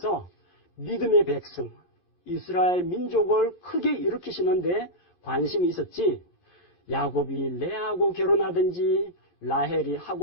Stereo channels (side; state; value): right; late; 11 ms